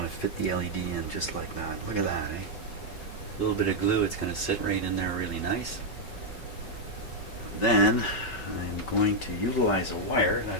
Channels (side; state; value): right; late; 5.3 ms